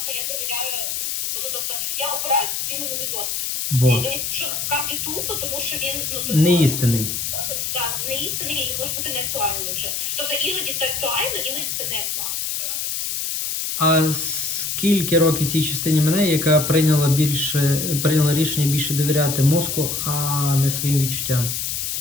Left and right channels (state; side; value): noise; left; hiss, 2 dB below the sound